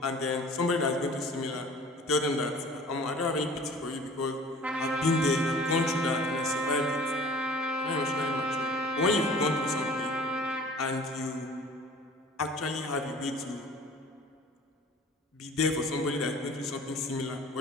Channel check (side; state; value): both; normal; correlation 0.46